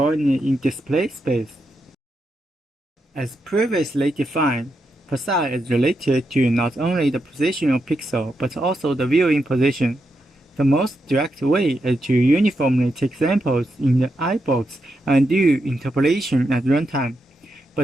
in display space. As previously defined, psi is related to not only the position of pixel, but also the viewing position. The most direct way is to uniformly take samples in the eyebox and do interpolation at runtime.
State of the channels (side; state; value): both; normal; correlation 0.84